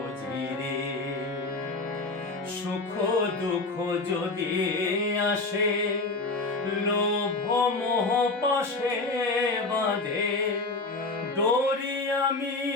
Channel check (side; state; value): right; quieter; 3.4 dB